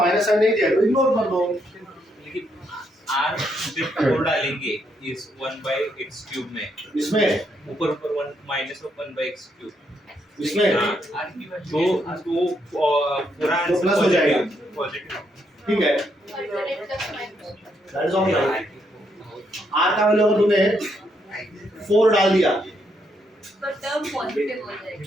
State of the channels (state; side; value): normal; both; correlation 0.76